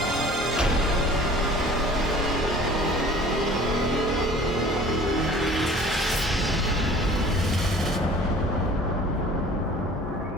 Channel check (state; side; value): normal; both; correlation 0.47